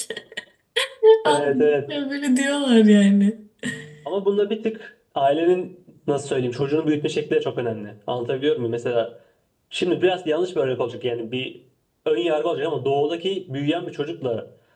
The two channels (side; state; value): both; identical; correlation 1.00